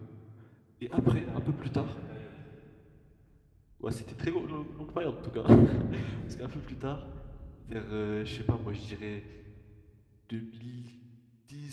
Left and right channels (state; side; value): identical; both; correlation 1.00